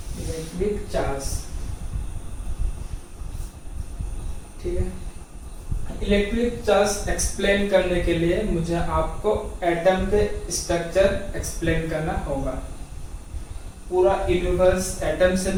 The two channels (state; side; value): identical; both; correlation 1.00